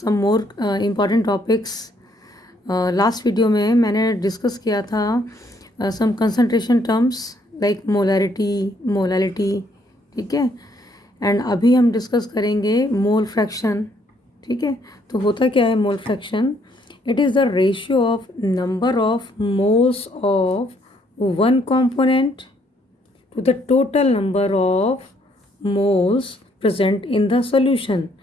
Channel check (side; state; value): both; normal; correlation 0.68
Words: more important topics. Last video में मैंने discuss किया था some concentration terms like molarity, molality, ठीक है. And अभी हम डिस्कस करेंगे मोल फ्रैक्शन. ठीक है, तो होता क्या है mole fraction? It is the ratio of number of moles of one component to the total number of moles present in the solution.